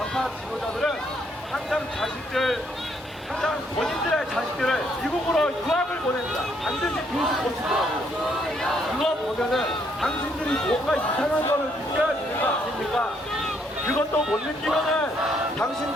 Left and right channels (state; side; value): normal; both; correlation 0.71